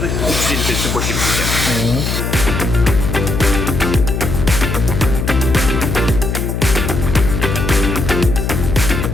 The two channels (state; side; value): noise; left; hum, 2 dB below the sound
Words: 350 litresi boş gidecek.